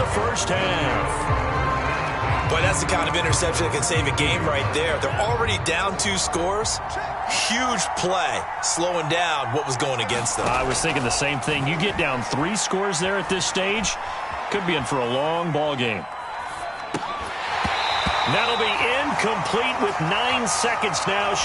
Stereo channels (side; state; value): both; identical; correlation 1.00